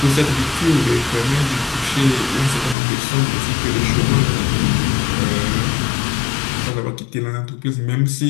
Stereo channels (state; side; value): drops out; right; at 2.8 s